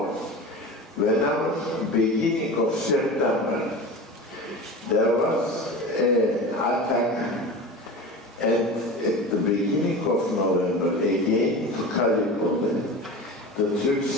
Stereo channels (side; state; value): both; normal; correlation 0.32